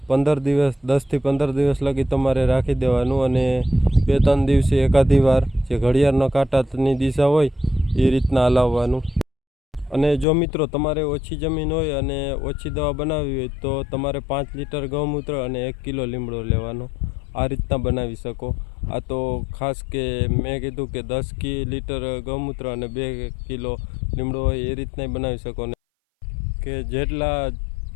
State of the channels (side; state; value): right; drops out; at 10.2 s